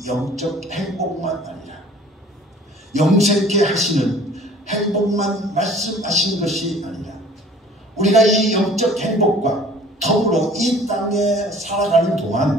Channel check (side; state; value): both; normal; correlation 0.50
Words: 영적 행복만 아니라 영생케 하시는 행복만 말씀하신 것이 아니라 우리가 이 영적 행복과 더불어 이 땅에 살아가는